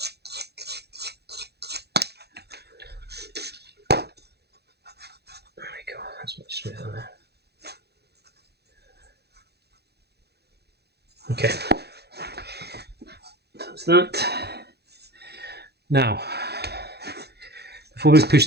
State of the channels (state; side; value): late; left; 0.48 ms